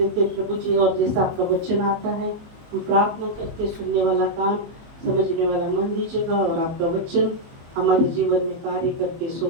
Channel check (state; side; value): late; left; 24 ms